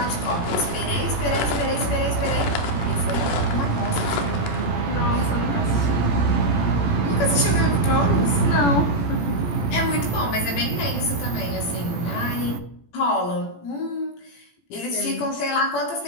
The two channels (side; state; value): right; late; 17 ms